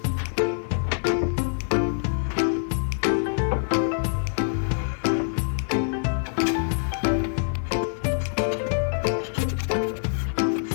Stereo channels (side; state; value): right; silent; digital silence